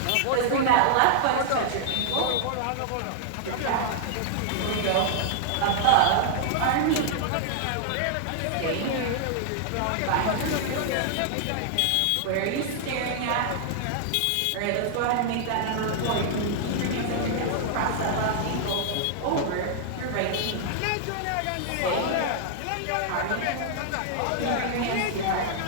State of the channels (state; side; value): different; both; correlation -0.01